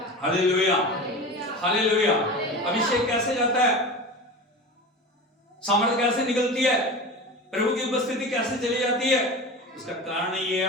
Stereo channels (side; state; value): both; normal; correlation 0.31